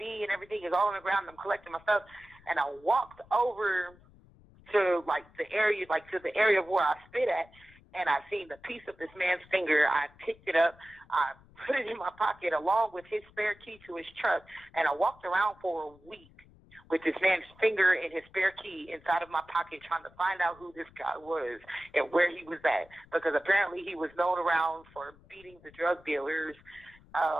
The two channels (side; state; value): left; noise; rumble, 26 dB below the sound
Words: and everything is all on the ground, and I'm collecting my stuff, and I walked over to the area of where I spit at, and I seen the piece of this man's finger. I picked it up, I put it in my pocket along with his spare key to his truck, and I walked around for a week with this man's finger and his spare key inside of my pocket, trying to find out who this guy was and where he was at, because apparently he was known around for beating the drug dealers